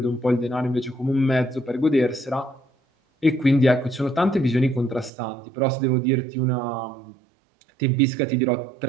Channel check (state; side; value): drops out; left; at 5.1 s